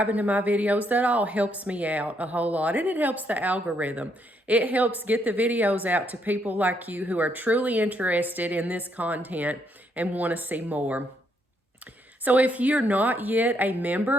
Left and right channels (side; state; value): both; normal; correlation 0.74